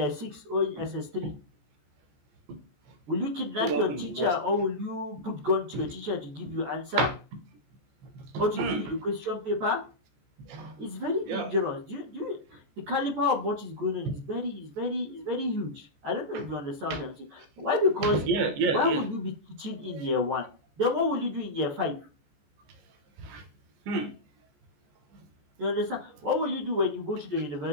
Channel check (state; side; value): late; left; 14 ms